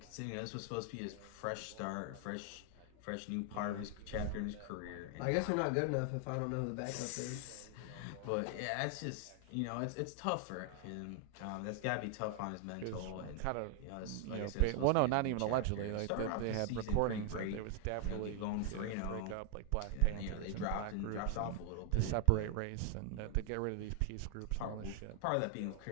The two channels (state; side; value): different; both; correlation 0.00